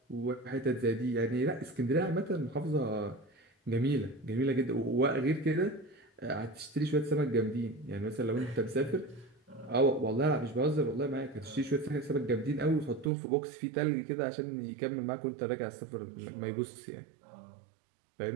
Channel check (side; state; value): left; drops out; at 13.1 s